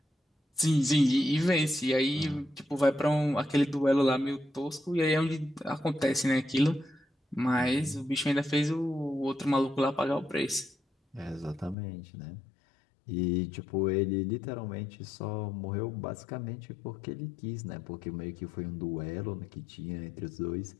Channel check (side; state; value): right; drops out; at 11.8 s